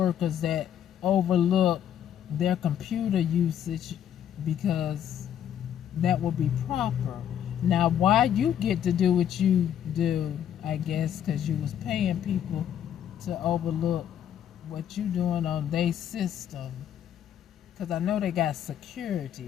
that overlook their computer usage because that would be proper. Now, why you get to do what you do, I guess, because you was paying people to overlook what you doing on their system. Because I know they got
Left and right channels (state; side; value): quieter; right; 9.9 dB